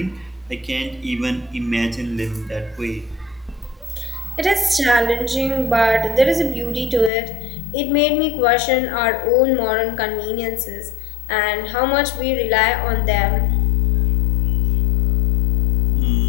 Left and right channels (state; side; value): drops out; right; at 7.1 s